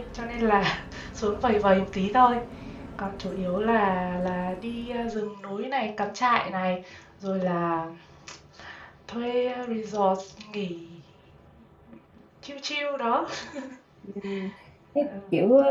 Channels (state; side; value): identical; both; correlation 1.00